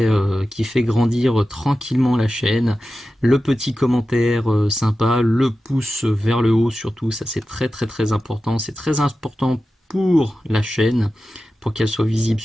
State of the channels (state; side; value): normal; both; correlation 0.93